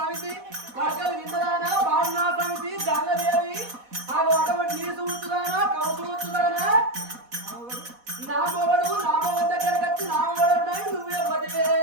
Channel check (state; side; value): late; left; 4.1 ms